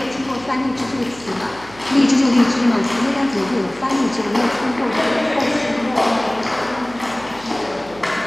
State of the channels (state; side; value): noise; right; hum, 22 dB below the sound